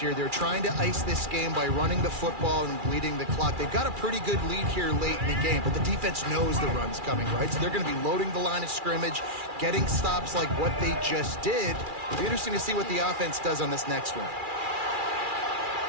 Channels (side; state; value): left; late; 2.4 ms